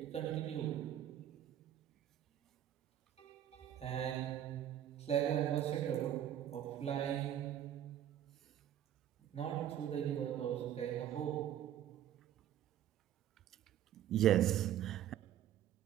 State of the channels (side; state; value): left; quieter; 11.2 dB